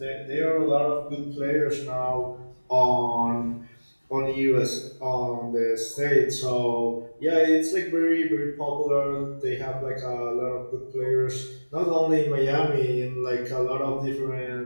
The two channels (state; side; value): inverted; both; correlation -1.00